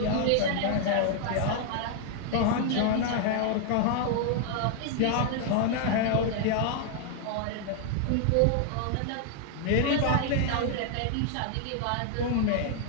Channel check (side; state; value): both; different; correlation 0.00